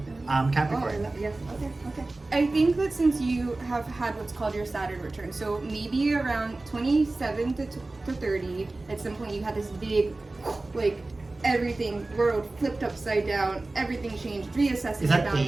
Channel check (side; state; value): left; quieter; 3.1 dB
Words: Capricorn. Yes, okay. I think that since you have had what's called your Saturn return, so maybe around 27 to 30, at some point you had this big, like, everything, world flipped upside down, everything changed, reassessing Is that your